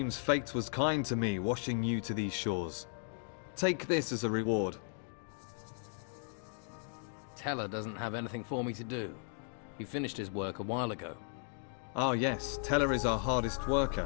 fate was kind to me, washing you to these shores. Take this as a reward. Teller doesn't have anything for me to do. He finished his work a while ago. Ah yes, Teller is our hardest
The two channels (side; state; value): right; silent; 54 dB below the other